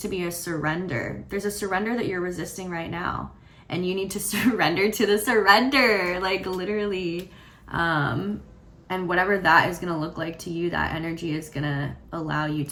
be a surrender. There's a surrender that you're resisting right now, and you need to surrender to the surrender, like, literally. And whatever that is going to look like to you, that energy is going to allow you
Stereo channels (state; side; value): identical; both; correlation 1.00